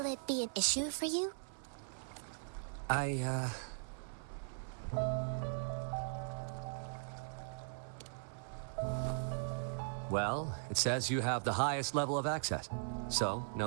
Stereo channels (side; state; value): left; silent; 52 dB below the other